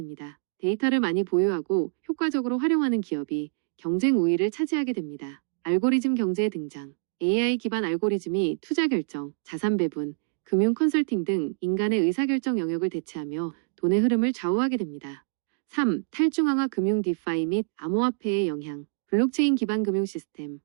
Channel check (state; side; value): silent; left; digital silence